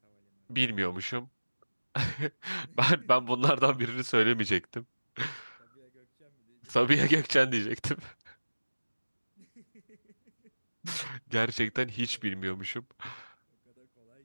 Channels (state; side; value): inverted; both; correlation -1.00